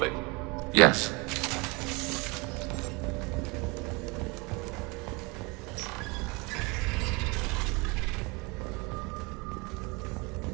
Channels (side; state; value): left; quieter; 27.4 dB